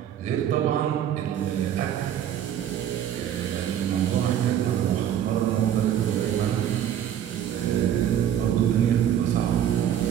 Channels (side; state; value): left; quieter; 10.2 dB